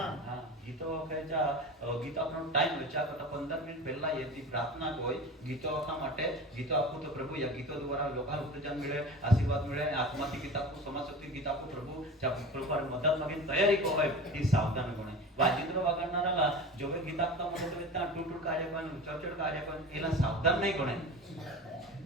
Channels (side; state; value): both; normal; correlation 0.33